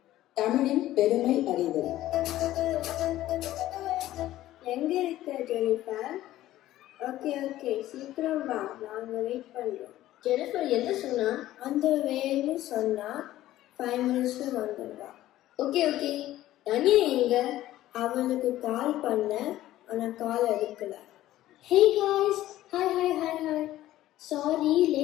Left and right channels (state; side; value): quieter; right; 14.5 dB